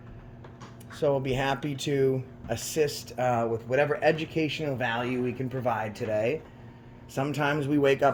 So we'll be happy to assist with whatever educational value we can provide today. Sometimes we wake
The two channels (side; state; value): both; identical; correlation 1.00